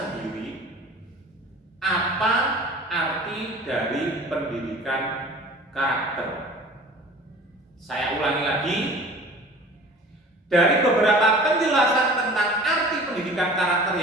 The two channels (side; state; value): both; normal; correlation 0.44